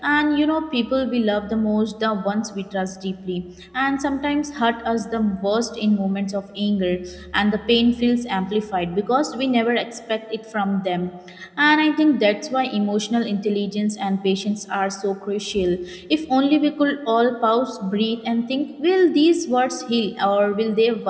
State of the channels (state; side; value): identical; both; correlation 1.00